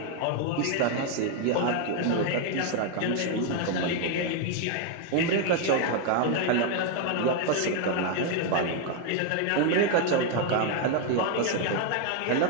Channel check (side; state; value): both; different; correlation 0.01